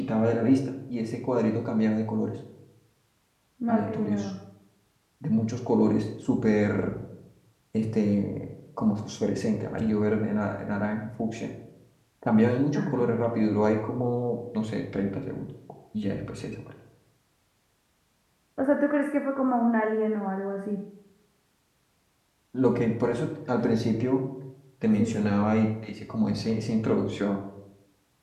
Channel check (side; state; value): both; identical; correlation 1.00